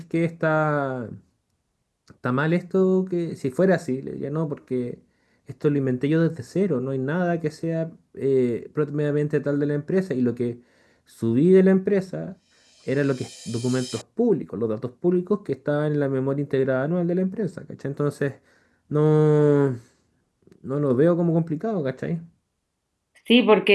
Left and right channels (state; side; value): identical; both; correlation 1.00